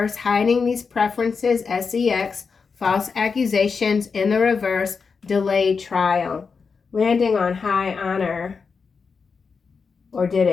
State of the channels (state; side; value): quieter; right; 5.3 dB